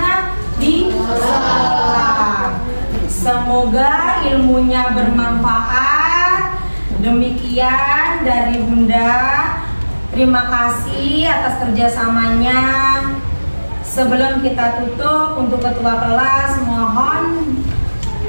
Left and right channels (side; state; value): both; inverted; correlation -1.00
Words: Di sekolah. Semoga ilmunya bermanfaat. Demikian dari Bunda. Terima kasih atas kerjasamanya. Sebelum kita tutup, untuk ketua kelas mohon